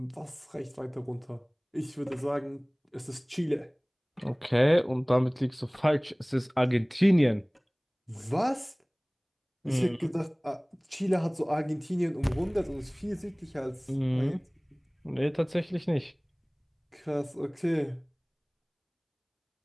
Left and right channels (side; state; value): both; identical; correlation 1.00